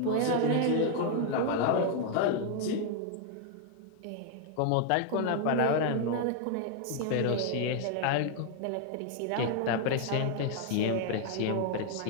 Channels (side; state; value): both; different; correlation 0.00